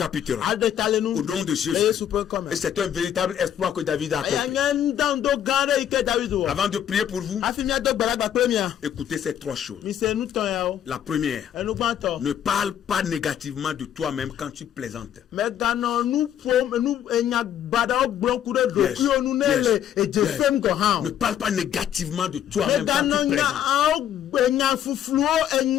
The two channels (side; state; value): right; quieter; 10.1 dB